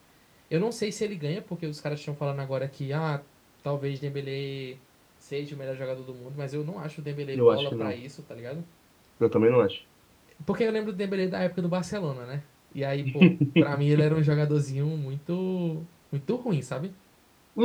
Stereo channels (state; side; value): identical; both; correlation 1.00